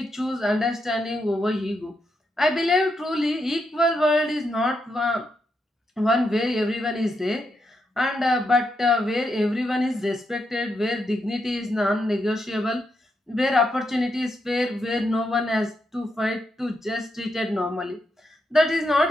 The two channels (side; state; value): both; normal; correlation 0.82